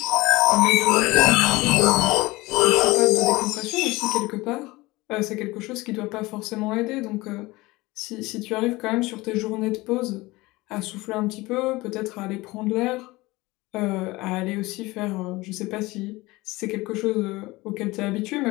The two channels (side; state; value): right; quieter; 21.0 dB